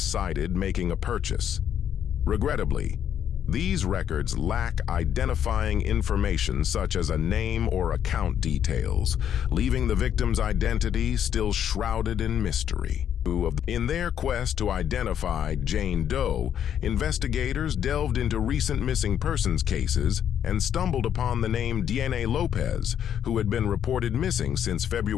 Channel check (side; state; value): right; quieter; 9.4 dB